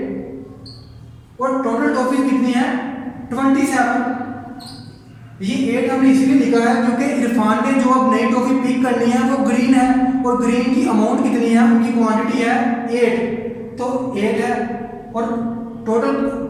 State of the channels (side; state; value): both; identical; correlation 1.00